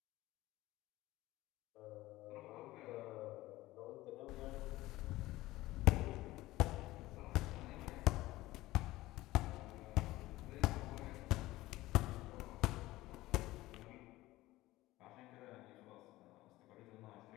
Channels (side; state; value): right; quieter; 17.6 dB